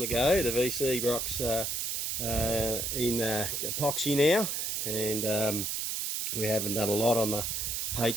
go. The VC rock's in epoxy now, and we haven't done a lot on the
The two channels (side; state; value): right; noise; hiss, 1 dB below the sound